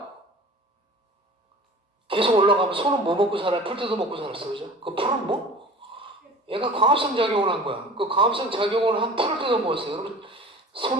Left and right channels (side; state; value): both; normal; correlation 0.41